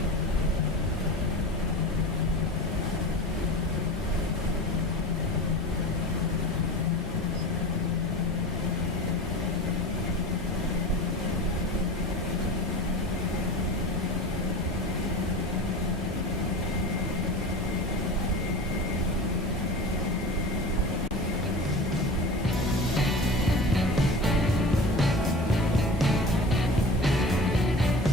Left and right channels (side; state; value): both; normal; correlation 0.33